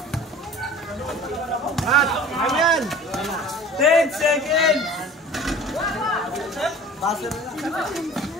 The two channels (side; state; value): both; normal; correlation 0.43